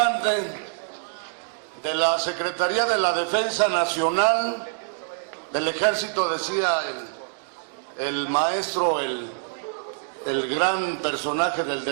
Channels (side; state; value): left; silent; digital silence